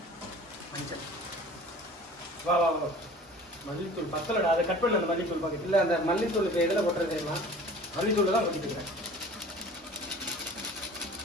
மஞ்சள். வா வா வா. மல்லித்தூள் பத்தலடா. அதை கட் பண்ண அந்த மல்லித்தூள் பாக்கெட். இல்ல அந்த மல்லித்தூளுக்கு எதுல போட்டுறது தெரியுமா? மல்லித்தூள் தான் கொட்டிட்டு இருக்கேன்.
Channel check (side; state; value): both; normal; correlation 0.44